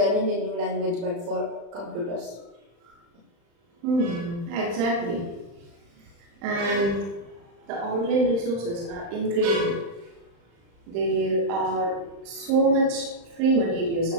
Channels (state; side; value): late; left; 35 ms